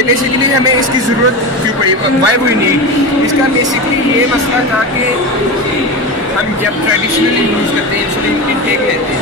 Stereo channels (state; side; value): normal; both; correlation 0.23